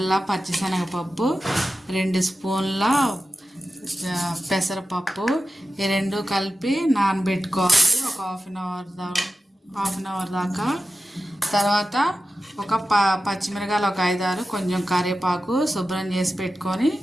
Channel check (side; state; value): both; normal; correlation 0.93